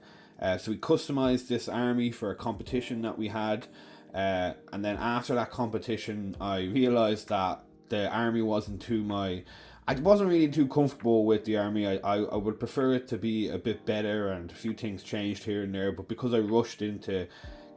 So we customized this army for a competition that we had, and then after that competition I realised that the army wasn't I wasn't really too comfortable with the army. I would prefer it to be a bit better, and a few things changed here and there, but because I rushed into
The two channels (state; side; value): identical; both; correlation 1.00